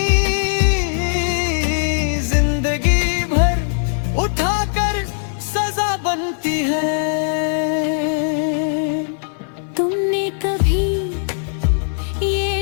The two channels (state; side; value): silent; right; 66 dB below the other